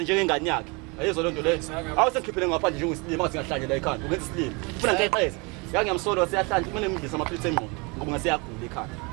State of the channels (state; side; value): quieter; left; 29.2 dB